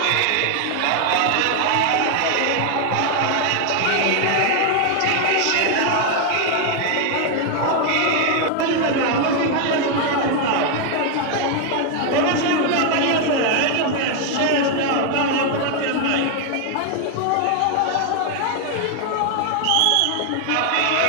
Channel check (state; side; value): different; both; correlation 0.01